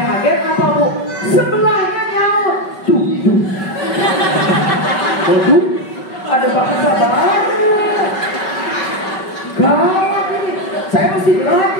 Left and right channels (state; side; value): late; right; 5.3 ms